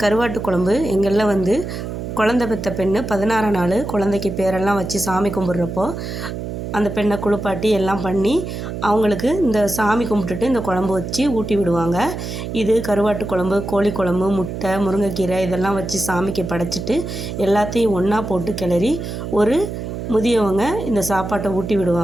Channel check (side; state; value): right; noise; hum, 6 dB below the sound